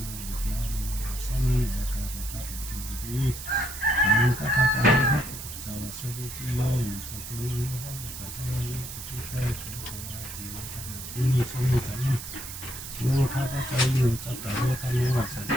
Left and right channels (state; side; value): noise; right; hiss, 10 dB below the sound